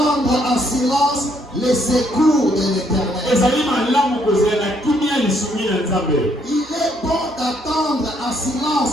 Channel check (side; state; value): both; normal; correlation 0.70